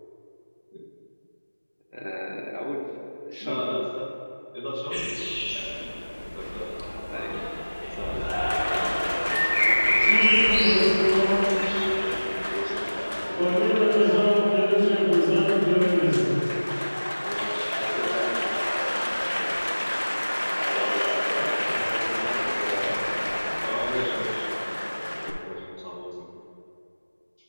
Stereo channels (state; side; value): inverted; both; correlation -1.00